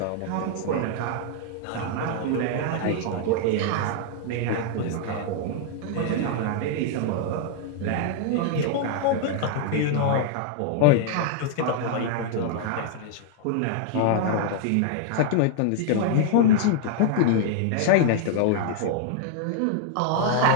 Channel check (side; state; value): both; different; correlation 0.00